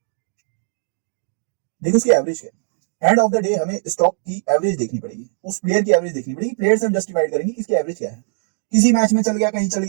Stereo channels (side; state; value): left; silent; digital silence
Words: लेकिन उसकी एवरेज क्या है? एंड ऑफ द डे हमें स्टॉक की एवरेज देखनी पड़ेगी, उस प्लेयर की एवरेज देखनी पड़ेगी, प्लेयर से हम जस्टिफाइड करेंगे कि इसकी एवरेज क्या है। किसी मैच में चल गया, कहीं चल